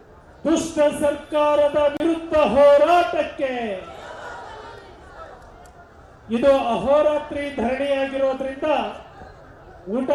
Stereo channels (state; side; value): identical; both; correlation 1.00